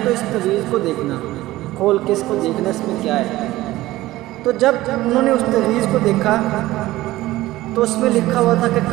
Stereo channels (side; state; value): left; quieter; 16.9 dB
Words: تو اس تویز کو دیکھنا، کھول کے اس کو دیکھنا اس میں کیا ہے۔ تو جب انہوں نے اس تویز کو دیکھا تو اس میں لکھا ہوا تھا کہ